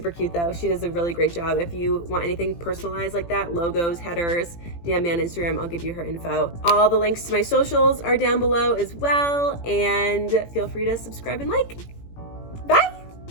cute though. She does a really great job. If you want anything personalized like that, logos, headers, DM me on Instagram. I'll give you her info. All the links to my socials are down below as well. And feel free to subscribe and like.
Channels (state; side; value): late; right; 18 ms